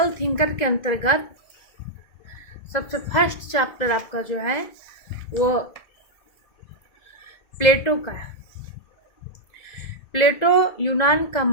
थिंकर के अंतर्गत सबसे फर्स्ट चैप्टर आपका जो है वो प्लेटो का है। प्लेटो यूनान का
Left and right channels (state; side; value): late; right; 2.0 ms